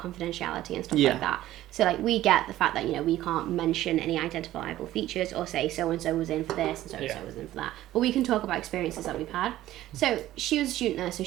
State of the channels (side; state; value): left; quieter; 14.4 dB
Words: confidentiality and stuff like that. So like we get the fact that, you know, we can't mention any identifiable features or say so and so was in for this and so and so was in for that. But we can talk about experiences that we've had. So she was a student nurse, so